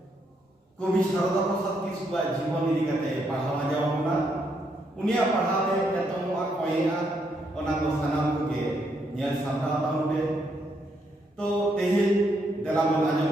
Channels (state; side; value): normal; both; correlation 0.76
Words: कवि शारदा प्रसाद किस्कुआ जीवन इदी कते पढ़ावा जावना उनिया पढ़ावे एतमवा कोयना ओना को सनाम के नेल सामना ताउबे तो तेहे देला मन आजम